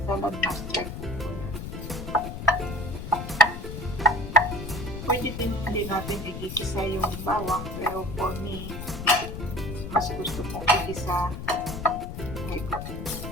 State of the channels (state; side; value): noise; left; rumble, 8 dB below the sound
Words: saladmaster cookware. Pwede din hindi natin igigisa yung bawang, pero for me, mas gusto kong igisa ito.